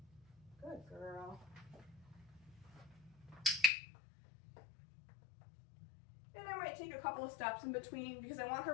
Good girl. And I might take a couple of steps in between because I want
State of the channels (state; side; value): drops out; right; at 3.7 s